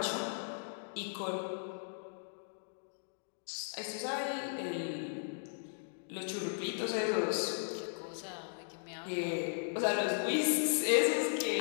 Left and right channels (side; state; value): right; silent; digital silence